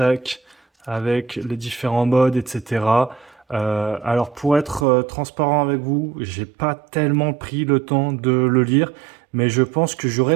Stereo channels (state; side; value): drops out; left; at 4.9 s